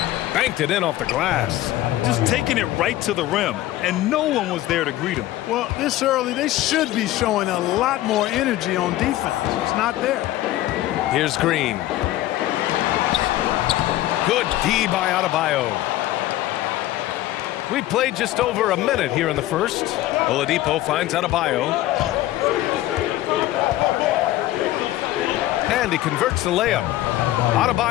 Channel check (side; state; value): right; quieter; 15.2 dB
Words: Banked it in off the glass. Just taking it right to the rim, and no one was there to greet him. Well, this early, they should be showing a lot more energy on defense. It's not there. Here's Green. Good D by Adebayo. We played just over a minute here in the first. Oladipo finds Adebayo. And he converts the layup.